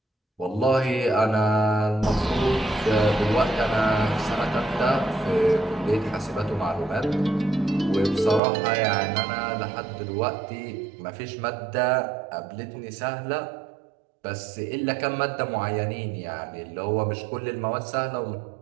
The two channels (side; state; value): left; drops out; at 8.4 s